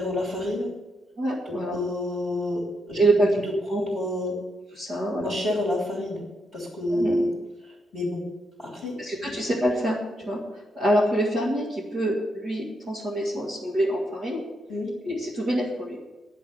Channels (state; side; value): normal; both; correlation 0.80